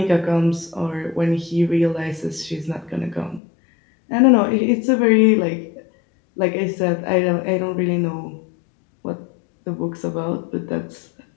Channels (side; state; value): right; drops out; at 3.4 s